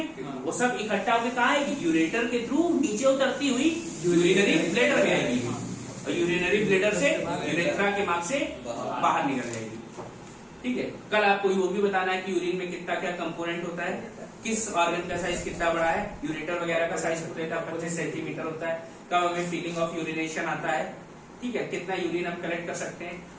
हाँ। वो सब इकट्ठा होकर कहाँ आएगी? यूरेटर के थ्रू नीचे उतरती हुई यूरिनरी ब्लैडर में आएगी, हाँ। और यूरिनरी ब्लैडर से यूरेथ्रा के मार्ग से बाहर निकल जाएगी। ठीक है, कल आपको वो भी बताना है कि यूरिन में कितना क्या कंपोनेंट होता है, किस ऑर्गन का साइज कितना बड़ा है। यूरेटर वगैरह का साइज होता है 25 सेंटीमीटर होता है। कब हमें फीलिंग ऑफ यूरिनेशन आता है, ठीक है, कितना यूरिन हम कलेक्ट कर सकते हैं,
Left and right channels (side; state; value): both; identical; correlation 1.00